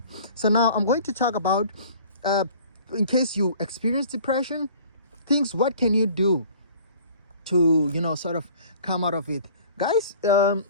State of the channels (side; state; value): both; inverted; correlation -0.49